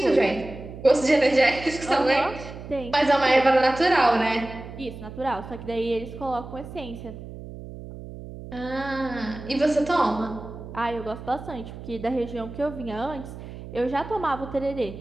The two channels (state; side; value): noise; right; hum, 13 dB below the sound